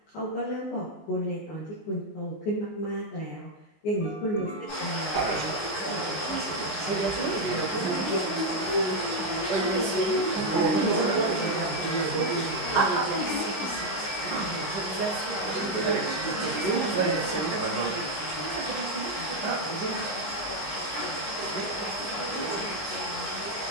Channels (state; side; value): late; right; 19 ms